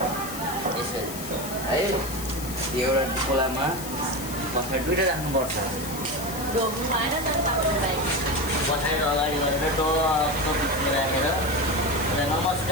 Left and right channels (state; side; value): noise; left; hiss, 10 dB below the sound